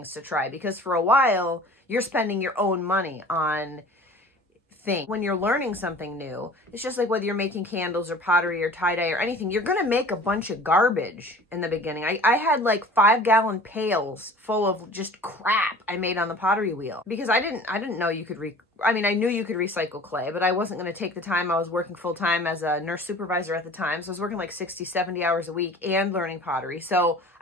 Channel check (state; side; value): normal; both; correlation 0.44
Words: to try. Because for a while, you're spending your own money on things. When you're learning something new, it's just like whether you're making candles or pottery or tie-dye or anything, you're going to make a bunch of garbage in the beginning. I had like 5-gallon pails full of just crap I made on the pottery wheel because I didn't know you could I knew you could recycle clay, but I wasn't going to take the time. I was working full-time as a nurse supervisor at the time. So I was working like 60, 70 hours a week and learning pottery. So